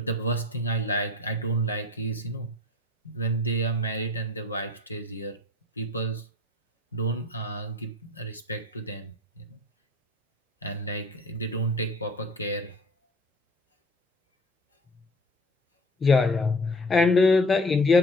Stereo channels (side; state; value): both; normal; correlation 0.42